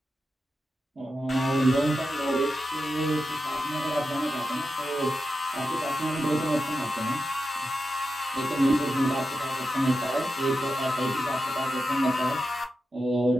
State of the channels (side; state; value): both; normal; correlation 0.89